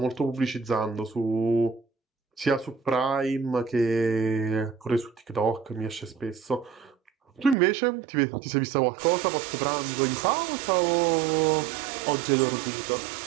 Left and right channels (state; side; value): drops out; left; at 7.6 s